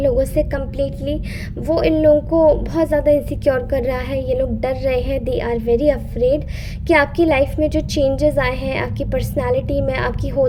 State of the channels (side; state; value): both; identical; correlation 1.00